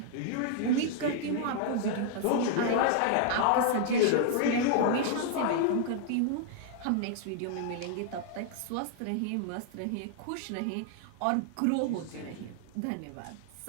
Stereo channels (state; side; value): different; both; correlation -0.01